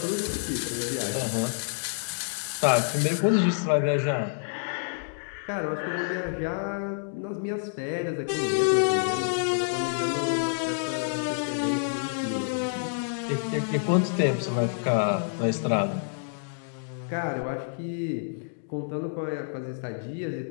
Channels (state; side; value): silent; right; digital silence